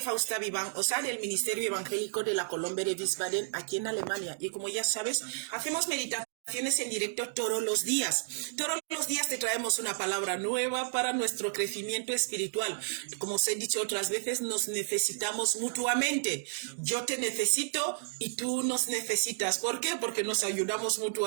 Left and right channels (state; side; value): silent; left; digital silence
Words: Vivan, o sea, del Ministerio Evangélico de la Colombia de Wiesbaden, aquí en Alemania. Y como ya sabes, hacemos meditaciones en directo todos los días. Todos los días te traemos una palabra nueva para nuestro crecimiento espiritual. Como os he dicho otras veces, nos necesitamos mutuamente. Yo te necesito y tú nos necesitas. ¿Por qué? Porque nos ayudamos